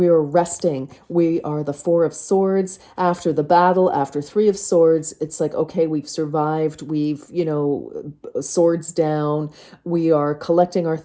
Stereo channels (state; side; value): identical; both; correlation 1.00